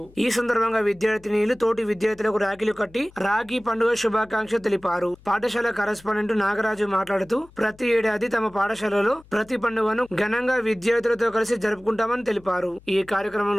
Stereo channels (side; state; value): left; noise; hum, 25 dB below the sound